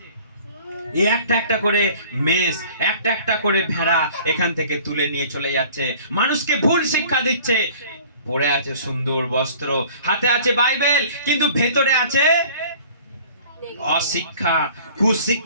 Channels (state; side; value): inverted; both; correlation -0.49